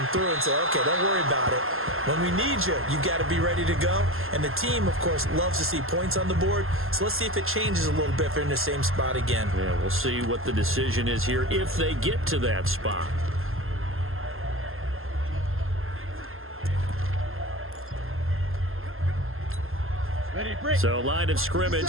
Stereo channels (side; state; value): left; late; 0.61 ms